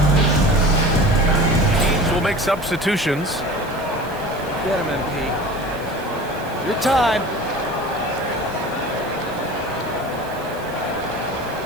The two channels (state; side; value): noise; right; hiss, 21 dB below the sound